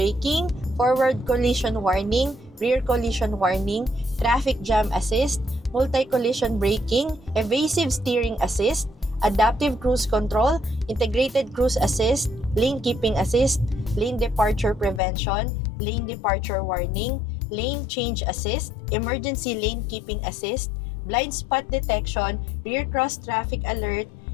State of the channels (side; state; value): right; drops out; at 15.0 s